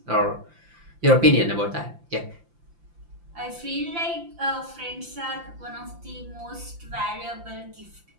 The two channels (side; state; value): left; late; 5.8 ms